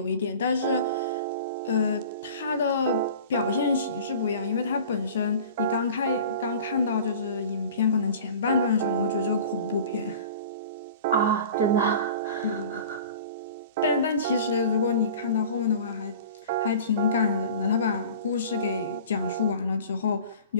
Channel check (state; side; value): inverted; both; correlation -0.41